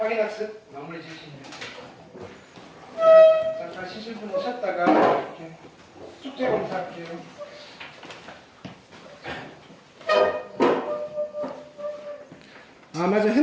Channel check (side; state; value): both; identical; correlation 1.00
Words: 마무리 지으시면 돼요. 잠깐 쉬실 분 오셨다가 이렇게 숙제 검사할게요. 아 맞아,